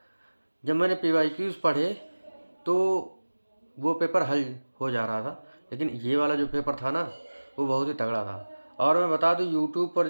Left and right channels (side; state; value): both; inverted; correlation -1.00